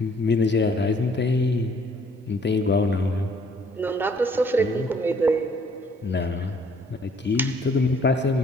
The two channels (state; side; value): normal; both; correlation 0.61